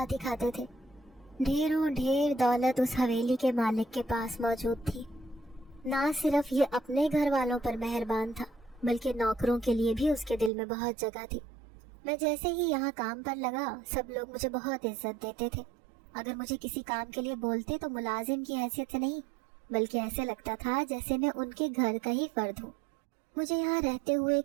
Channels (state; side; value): drops out; left; at 10.5 s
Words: ہی کھاتے تھے۔ ڈھیروں ڈھیر دولت اس حویلی کے مالک کے پاس موجود تھی۔ نہ صرف یہ اپنے گھر والوں پر مہربان تھا بلکہ نوکروں کے لیے بھی اس کے دل میں بہت جگہ تھی۔ میں جیسے ہی یہاں کام پر لگا سب لوگ مجھے بہت عزت دیتے تھے۔ اگر مجھے کسی کام کے لیے بولتے تو ملازم کی حیثیت سے نہیں، بلکہ ایسے لگتا تھا جیسے میں ان کے گھر کا ہی فرد ہوں۔ مجھے یہاں رہتے ہوئے